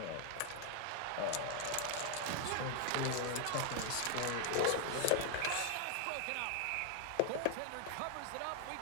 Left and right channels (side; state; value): both; different; correlation 0.00